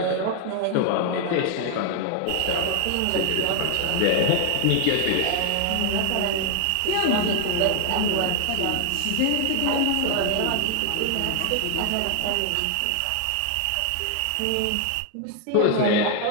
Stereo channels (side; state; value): both; different; correlation 0.00